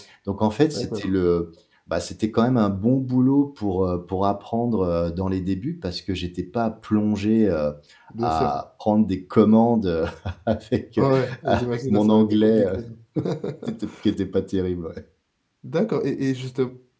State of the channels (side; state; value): both; identical; correlation 1.00